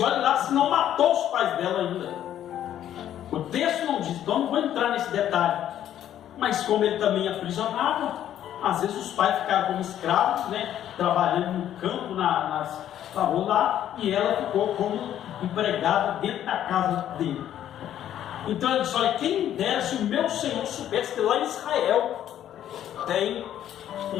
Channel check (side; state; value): right; quieter; 11.1 dB